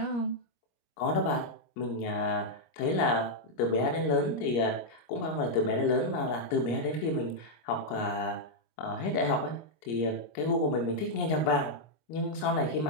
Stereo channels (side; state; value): right; late; 25 ms